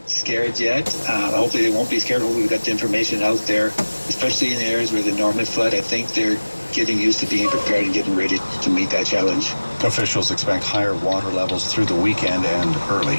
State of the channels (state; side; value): inverted; both; correlation -1.00